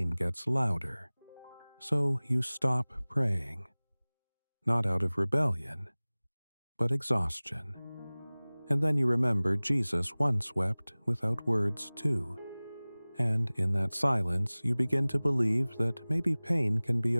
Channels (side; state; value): both; inverted; correlation -1.00